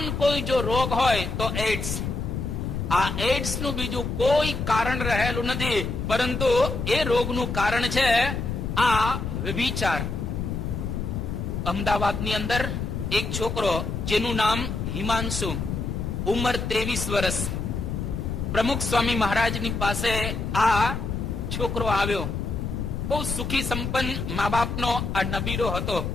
કોઈ જો રોગ હોય તો એડ્સ. આ એડ્સ નું બીજું કોઈ કારણ રહેલું નથી, પરંતુ એ રોગનું કારણ છે આ વ્યભિચાર. અમદાવાદની અંદર એક છોકરો જેનું નામ હિમાંશુ, ઉંમર 23 વર્ષ, પ્રમુખ સ્વામી મહારાજની પાસે આ છોકરો આવ્યો. બહુ સુખી સંપન્ન મા બાપનો આ નબીરો હતો.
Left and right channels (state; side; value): noise; left; rumble, 3 dB below the sound